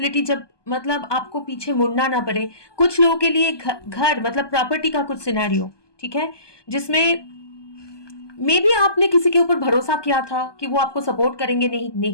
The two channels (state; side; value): late; right; 1.2 ms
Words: जब मतलब आपको पीछे मुड़ना ना पड़े। कुछ लोगों के लिए घर मतलब प्रॉपर्टी का कुछ सिनेरियो, ठीक है, जिसमें मे बी आपने किसी के ऊपर भरोसा किया था कि वो आपको सपोर्ट करेंगे,